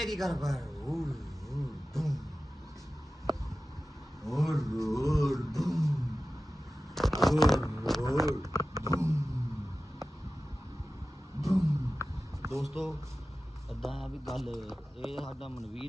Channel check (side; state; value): both; normal; correlation 0.95